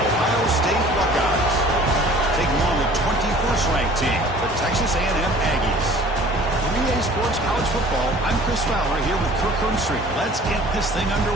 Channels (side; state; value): both; normal; correlation 0.49